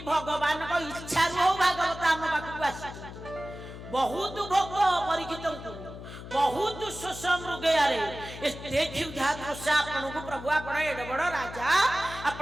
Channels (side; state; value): left; noise; hum, 12 dB below the sound